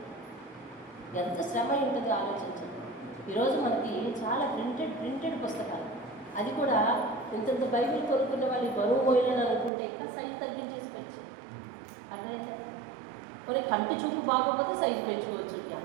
ఎంత శ్రమ ఉంటుందో ఆలోచించండి. ఈరోజు మనకి చాలా ప్రింటెడ్ పుస్తకాలు, అది కూడా ఇంతంత బైబిల్ కొనుక్కునే వాళ్ళు బరువు పోయినని అనుకుంటే ఇంకా సైజు తగ్గించేసుకోవచ్చు. అర్థమైతే మరి కంటి చూపు బాగోకపోతే సైజు పెంచుకోవచ్చు.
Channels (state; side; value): drops out; left; at 9.7 s